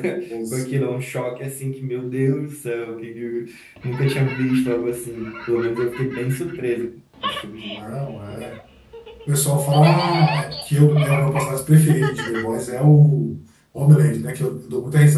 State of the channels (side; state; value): both; identical; correlation 1.00